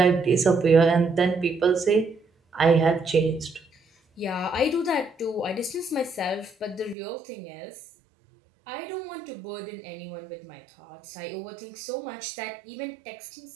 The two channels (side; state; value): left; drops out; at 7.0 s